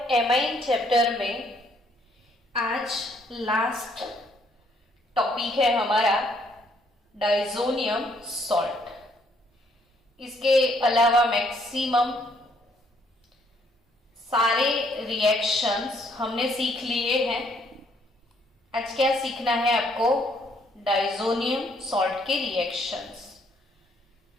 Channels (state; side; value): normal; both; correlation 0.67